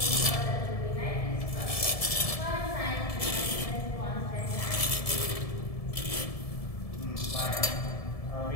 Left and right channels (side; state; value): right; late; 1.7 ms